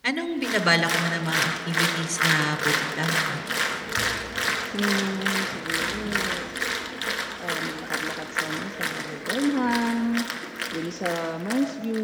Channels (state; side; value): identical; both; correlation 1.00